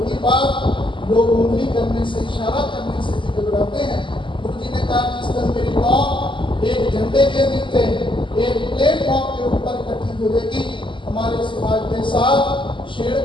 की बात, लोग उंगली करने से, इशारा करने से भी घबराते हैं। गुरु जी ने कहा, जिस दिन मेरी कौम एक झंडे के नीचे एक प्लेटफॉर्म के ऊपर इकट्ठी होगी, हमारे समाज के साथ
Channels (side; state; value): right; late; 0.24 ms